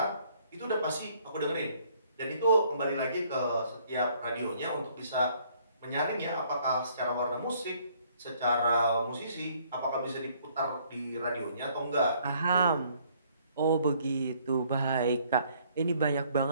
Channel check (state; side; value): inverted; both; correlation -0.63